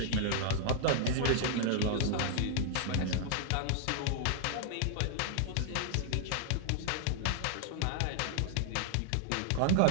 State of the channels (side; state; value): both; different; correlation -0.01